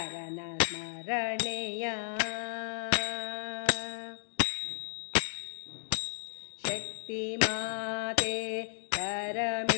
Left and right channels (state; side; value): silent; right; digital silence